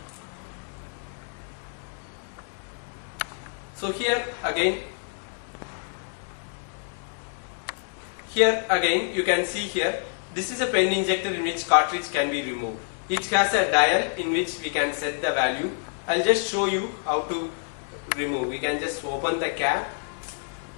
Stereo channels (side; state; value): right; silent; 59 dB below the other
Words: So here again you can see here, this is a pen injector in which cartridge can be removed. It has a dial in which we can set the value. I'll just show you how to remove. We can just open the cap